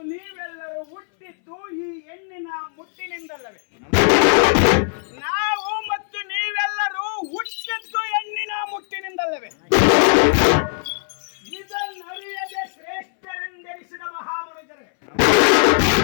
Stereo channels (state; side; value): silent; right; 65 dB below the other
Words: ನೀವೆಲ್ಲರೂ ಹುಟ್ಟಿದ್ದು ಈ ಹೆಣ್ಣಿನ ಮುಟ್ಟಿನಿಂದಲ್ಲವೇ? ನಾವು ಮತ್ತು ನೀವೆಲ್ಲರೂ ಹುಟ್ಟಿದ್ದು ಹೆಣ್ಣಿನ ಮುಟ್ಟಿನಿಂದಲ್ಲವೇ? ಇದನ್ನರಿಯದೆ ಶ್ರೇಷ್ಠರೆಂದೆನಿಸಿದ ಮಹಾಮನುಜರೇ,